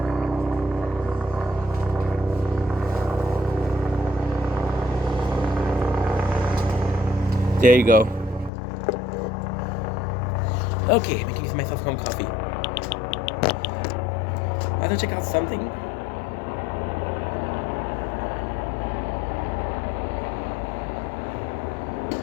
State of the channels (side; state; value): right; drops out; at 8.5 s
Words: There you go. Okay, making myself some coffee. I have to check out something.